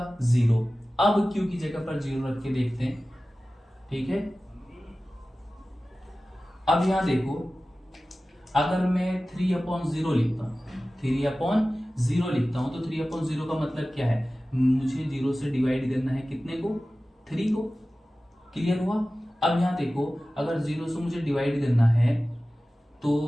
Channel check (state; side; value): normal; both; correlation 0.96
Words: 0। अब Q की जगह पर 0 रख के देखते हैं, ठीक है। अब यहां देखो, अगर मैं 3/0 लिखता हूं, 3/0 लिखता हूं तो 3/0 का मतलब क्या है, मुझे 0 से डिवाइड करना है कितने को, 3 को, क्लियर हुआ। अब यहां देखो, अगर 0 से मुझे डिवाइड करना है तो